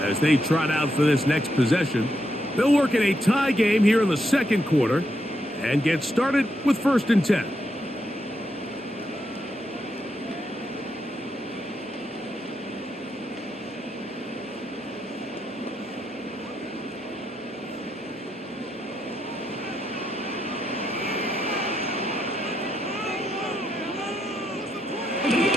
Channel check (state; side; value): normal; both; correlation 0.81